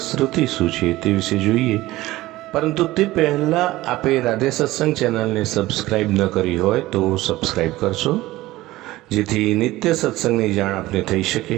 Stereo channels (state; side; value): quieter; left; 17.6 dB